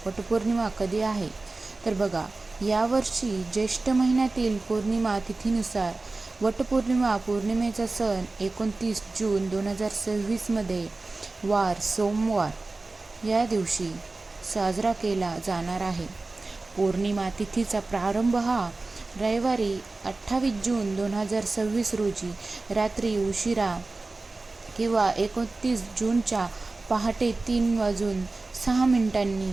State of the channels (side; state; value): left; quieter; 3.4 dB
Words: वटपौर्णिमा कधी आहे. तर बघा, यावर्षी ज्येष्ठ महिन्यातील पौर्णिमा तिथीनुसार वटपौर्णिमा पौर्णिमेचा सण 29 जून 2026मध्ये वार सोमवार या दिवशी साजरा केला जाणार आहे. पौर्णिमा तिथीचा प्रारंभ हा रविवारी 28 जून 2026 रोजी रात्री उशिरा किंवा 29 जूनच्या पहाटे 3:06